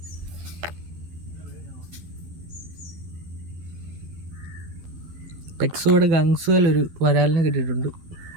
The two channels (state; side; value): late; left; 12 ms